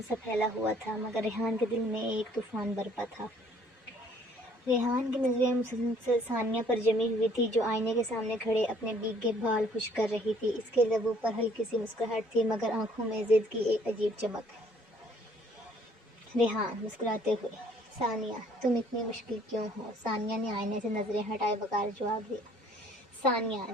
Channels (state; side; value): normal; both; correlation 0.60